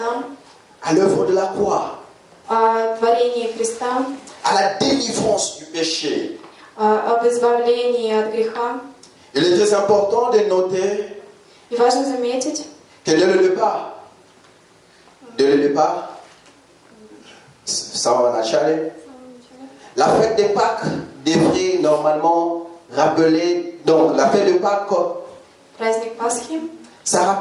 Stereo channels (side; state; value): both; identical; correlation 1.00